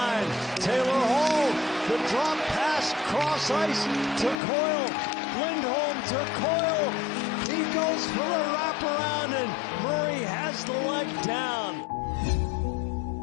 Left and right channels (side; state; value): right; drops out; at 4.4 s